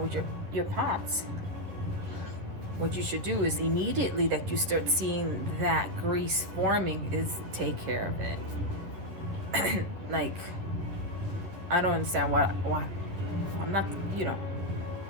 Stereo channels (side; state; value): left; late; 11 ms